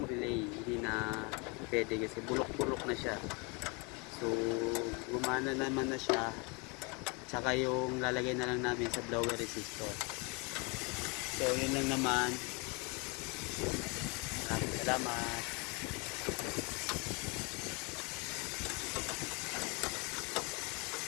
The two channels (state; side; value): quieter; right; 30.5 dB